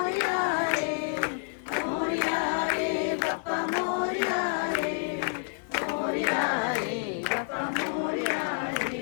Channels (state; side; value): silent; right; 59 dB below the other